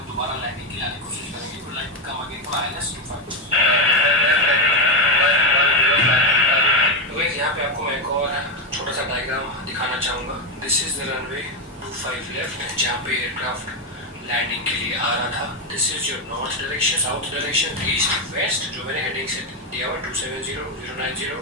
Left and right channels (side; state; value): both; normal; correlation 0.08